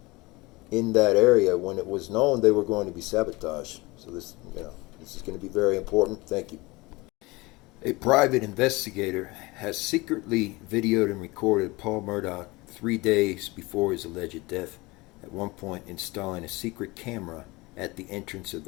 in that area when it was known they were going to be sabotaged. So this is going to be very important. Thank you. A private investigator has secretly videoed and recorded Paul Murdaugh 3 days before his alleged death, at one point installing a secret camera at the entrance of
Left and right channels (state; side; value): quieter; right; 23.0 dB